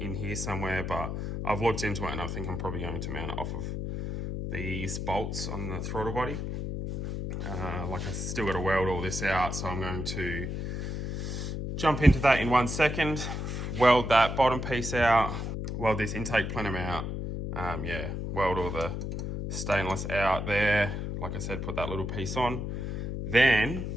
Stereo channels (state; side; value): noise; left; hum, 4 dB below the sound